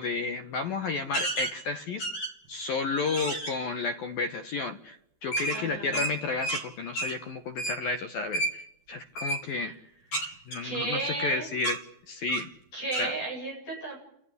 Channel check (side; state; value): right; late; 12 ms